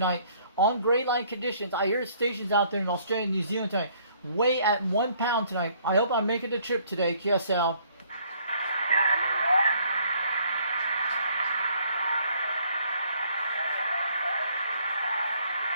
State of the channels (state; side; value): inverted; both; correlation -0.62